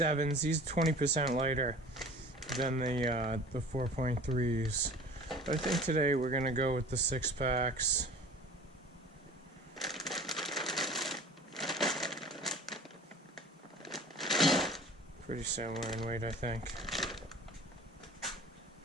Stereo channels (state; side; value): normal; both; correlation 0.43